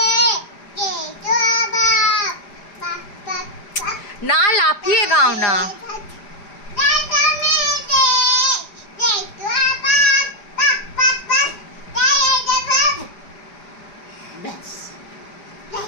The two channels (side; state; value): right; late; 4.9 ms